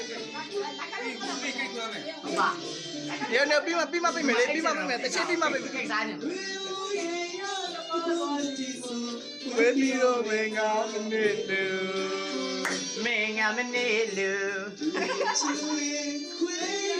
ဟုတ်ပါဒီနေ့ပြီးမှပြမယ်လေပြီးမှပြမယ်တစ်ချက်ပြီးမှပြမယ် ကိစ္စစားနေ ဝေးပြီးတော့မင်းကမနေလို့ မင်းငါမနေလို့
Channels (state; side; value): identical; both; correlation 1.00